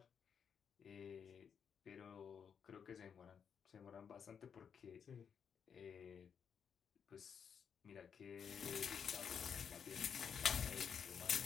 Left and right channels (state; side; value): quieter; right; 7.1 dB